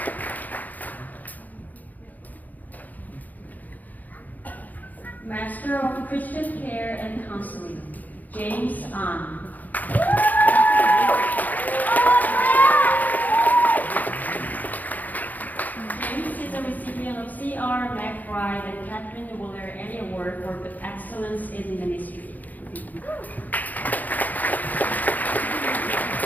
Master of Christian Care and Counseling, James An. James is a recipient of C.R. McBride and Catherine Wooler Annie Award for Excellence in Ministry.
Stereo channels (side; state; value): right; late; 0.081 ms